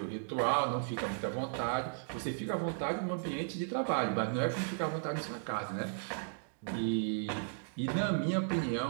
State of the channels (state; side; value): silent; left; digital silence